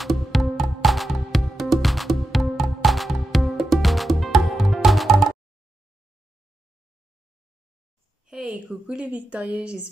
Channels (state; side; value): normal; both; correlation 0.89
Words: Hey, coucou les victorieux,